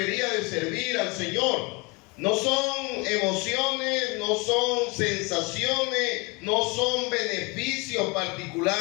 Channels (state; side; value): quieter; right; 27.9 dB